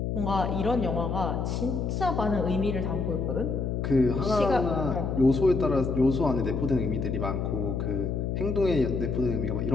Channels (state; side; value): noise; left; hum, 1 dB below the sound